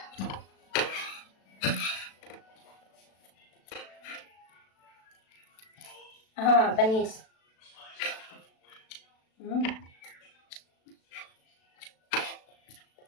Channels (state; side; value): late; right; 36 ms